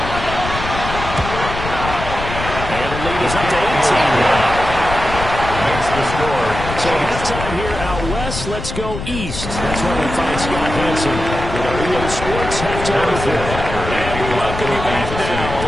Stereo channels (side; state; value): left; noise; rumble, 7 dB below the sound